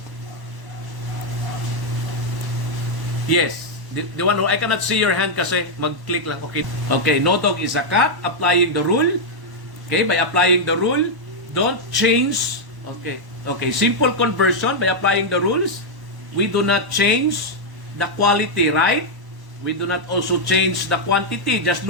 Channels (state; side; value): late; left; 1.1 ms